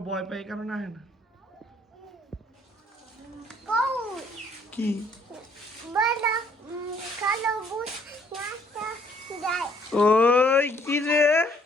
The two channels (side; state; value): both; normal; correlation 0.63